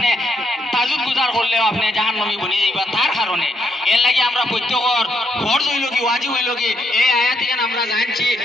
তাজুদ গুজার করলেও আপনি জাহান্নামী বনে যাইবা। তার কারণে এর লাগে আমরা প্রত্যেকর ফরজ হইল কি ওয়াজিব হইল কি এই আয়াতগান আমরা জানছি,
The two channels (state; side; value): normal; both; correlation 0.77